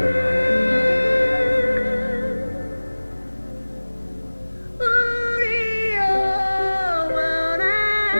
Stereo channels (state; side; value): inverted; both; correlation -1.00